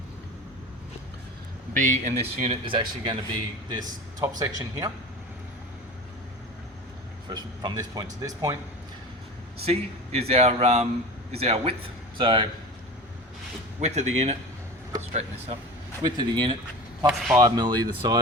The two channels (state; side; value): normal; both; correlation 0.34